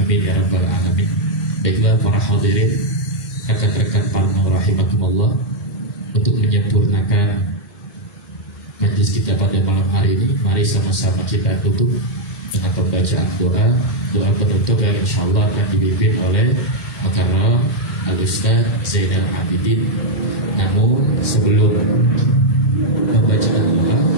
ya rabbal alamin. Baiklah para hadirin, rekan-rekan Parno rahimakumullah, untuk menyempurnakan majlis kita pada malam hari ini, mari sama-sama kita tutup dengan pembacaan doa penutup yang insyaallah akan dipimpin oleh Mukarram Al-Ustaz Zainal Abidin. Namun sebelum pembacaan doa,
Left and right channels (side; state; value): right; late; 1.2 ms